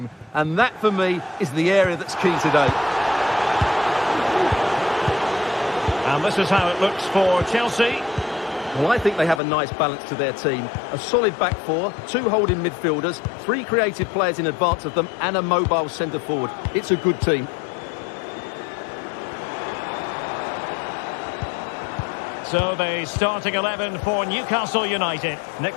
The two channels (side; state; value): right; drops out; at 9.4 s